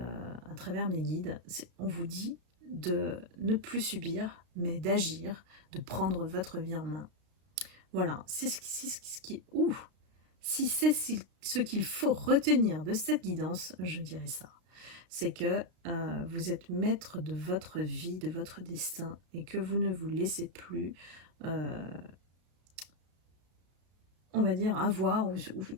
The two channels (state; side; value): late; left; 33 ms